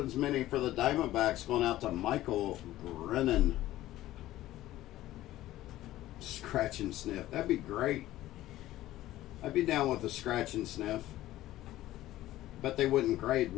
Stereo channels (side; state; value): right; quieter; 15.1 dB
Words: mini for the Diamondbacks, going out to Michael Brennan. Scratch and sniff. That'd be great. I'd be down with the scratch and sniff. Bet they wouldn't grade